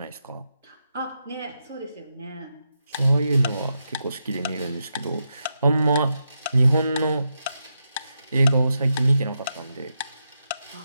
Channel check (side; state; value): both; inverted; correlation -0.85